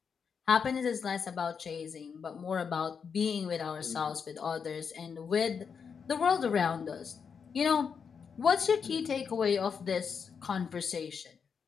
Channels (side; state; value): right; quieter; 6.3 dB